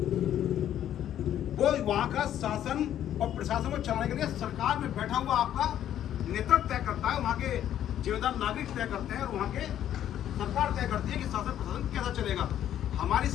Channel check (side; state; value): right; quieter; 11.0 dB